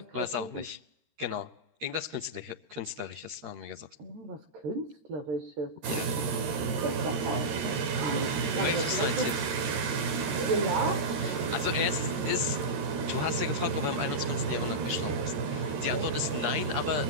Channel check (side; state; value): left; late; 13 ms